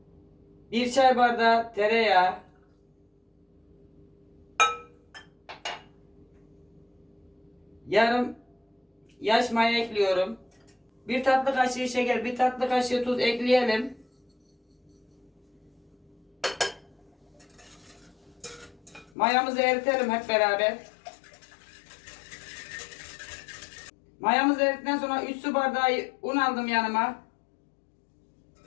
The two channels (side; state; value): right; drops out; at 19.1 s